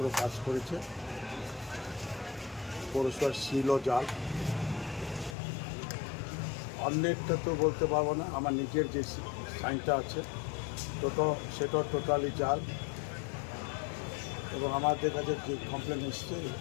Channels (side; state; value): right; drops out; at 5.4 s